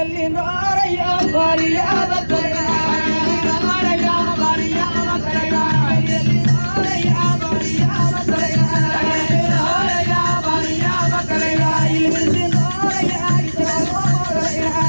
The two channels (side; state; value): both; inverted; correlation -1.00